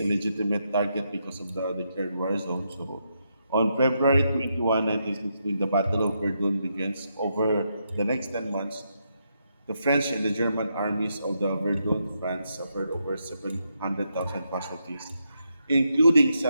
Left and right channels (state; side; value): inverted; both; correlation -0.81